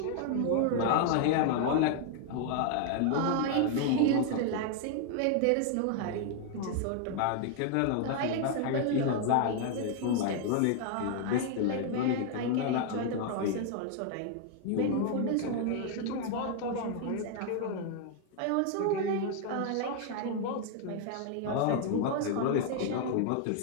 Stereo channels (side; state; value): both; different; correlation 0.00